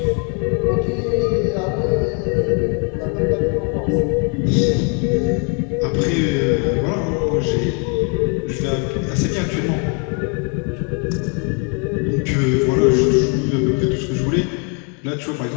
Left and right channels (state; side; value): quieter; right; 37.1 dB